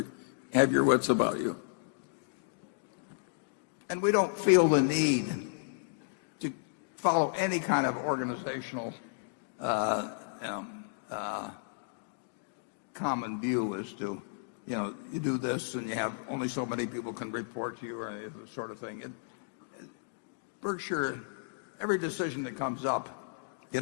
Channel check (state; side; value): silent; right; digital silence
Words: have your wits about you. And we don't feel the need to follow any kind of organizational common view as to, you do this and you have only so many people can report to you, or any of this sort of thing. Berkshire, every decision that comes up,